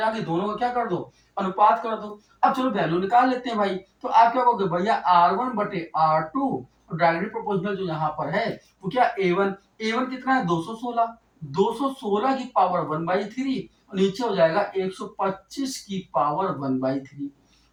आ गई, दोनों को क्या कर दो, अनुपात कर दो। अब चलो वैल्यू निकाल लेते हैं भाई। तो आप क्या कहोगे भैया r1 बटे r2, और डायरेक्टली प्रोपोर्शनल जो यहाँ पर है वो क्या a1, a1 कितना है 216, 216 की पावर 1/3, और नीचे हो जाएगा 125 की पावर 1/3।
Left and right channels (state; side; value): identical; both; correlation 1.00